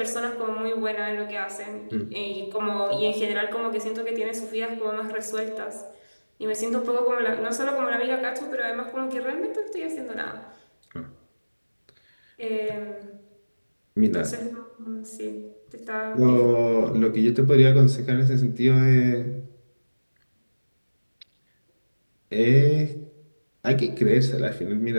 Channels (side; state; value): both; inverted; correlation -1.00